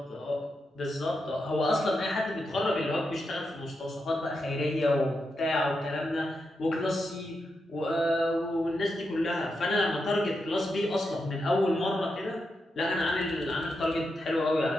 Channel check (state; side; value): normal; both; correlation 0.86